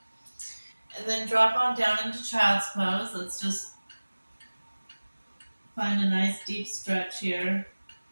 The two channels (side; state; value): both; inverted; correlation -1.00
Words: And then drop on down into child's pose. Let's just find a nice deep stretch here.